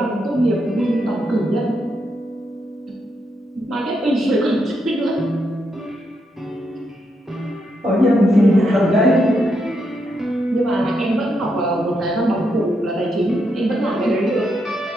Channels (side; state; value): both; normal; correlation 0.81